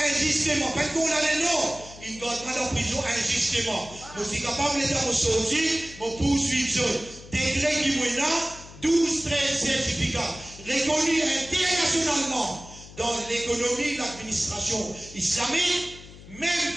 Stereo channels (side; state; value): left; noise; hum, 18 dB below the sound